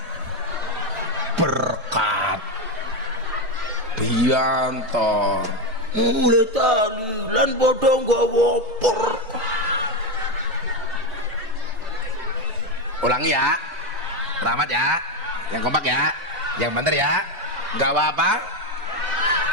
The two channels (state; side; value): late; left; 3.2 ms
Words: berkat biantar, mulai tahlilan padha nggawa berkat. Ulangi ya, rahmat ya, yang kompak ya, yang bener ya, nggak apa-apa,